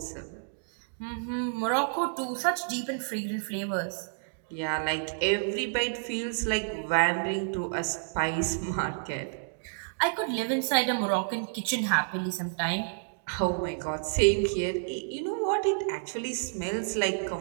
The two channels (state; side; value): silent; left; digital silence